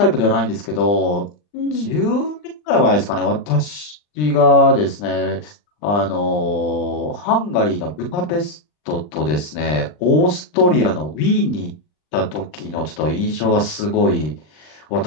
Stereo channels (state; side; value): late; right; 39 ms